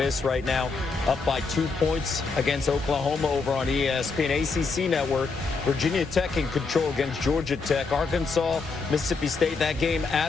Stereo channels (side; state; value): right; quieter; 4.4 dB